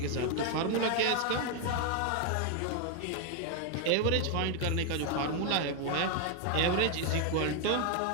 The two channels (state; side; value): different; both; correlation 0.01